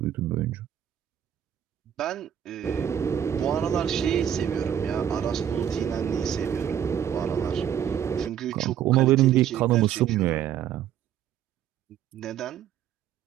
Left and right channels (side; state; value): left; quieter; 9.9 dB